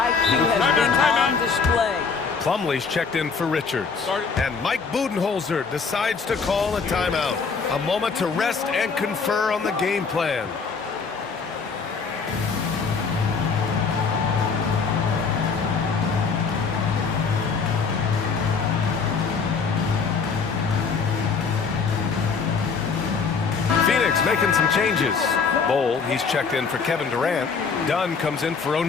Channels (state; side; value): quieter; right; 5.3 dB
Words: has been on display. Plumlee's checked in for Richards. And Mike Budenholzer decides to call a timeout. A moment to rest and confer on the game plan. Phoenix making some changes. Bowl, he's checked in for Kevin Durant. Dunn comes in for